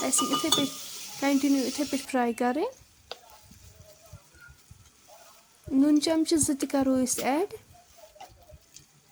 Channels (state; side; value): identical; both; correlation 1.00